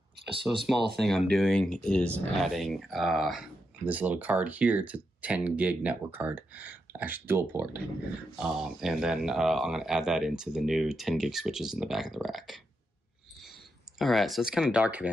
So a small thing I'm doing is adding this little card here to 10 gig network card, actually dual port. And then I'm gonna add that into the new 10 gig switches in the back of the rack. All right, so it's kind of dark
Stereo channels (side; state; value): both; normal; correlation 0.84